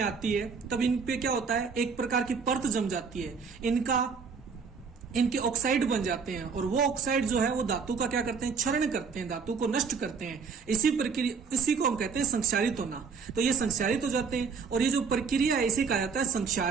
आती है, तब इन पे क्या होता है? एक प्रकार की परत जम जाती है, इनके ऑक्साइड बन जाते हैं, और वो ऑक्साइड जो है वो धातु का क्या करते हैं? क्षरण करते हैं, धातु को नष्ट करते हैं। इसी को हम कहते हैं संक्षारित होना। तो ये संक्षारित हो जाते हैं, और ये जो प्रक्रिया है इसे कहा जाता है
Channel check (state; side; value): quieter; left; 5.6 dB